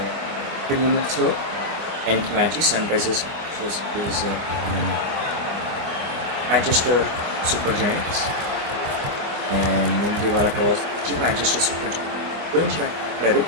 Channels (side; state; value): left; late; 24 ms